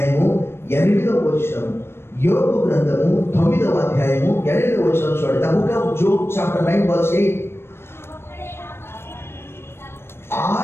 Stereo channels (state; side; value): late; right; 0.12 ms